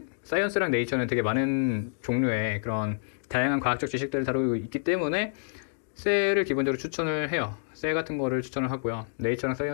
사이언스랑 네이처는 되게 많은 종류의 그런 다양한 과학적 지식들을 다루고 있기 때문에 셀을 기본적으로 추천을 해요. 셀 같은 거를 추천을 하고요. 네이처랑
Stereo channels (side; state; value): right; silent; digital silence